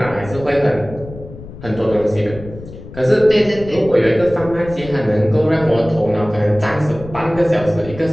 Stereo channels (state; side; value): noise; left; rumble, 15 dB below the sound